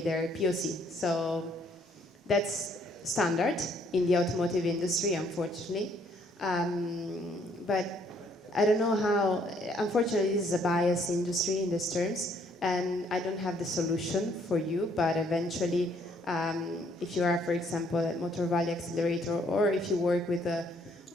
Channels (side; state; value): both; normal; correlation 0.66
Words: their POC. So that's standard in the automotive industry, unfortunately. But I don't know how, unfortunately this is a biased industry in these terms, and I don't have the solution for you, but eventually if you are, for example, at Motor Valley Accelerator, or if you work with